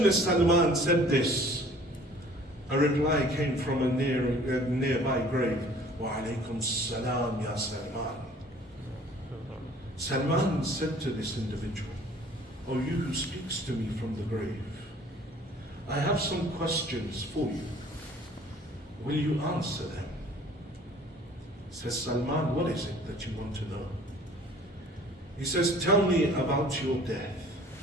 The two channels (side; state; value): both; normal; correlation 0.52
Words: as Salman said this, a reply came from a nearby grave. Wa alaykum salam ya Salman. Salman said to this individual, O you who speaks to me from the grave, I have some questions for you. Will you answer them? Says Salman, what is it that you want to know? He says, tell me about your death.